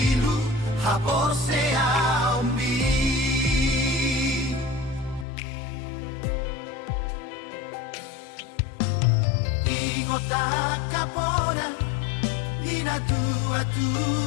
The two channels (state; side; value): drops out; right; at 5.2 s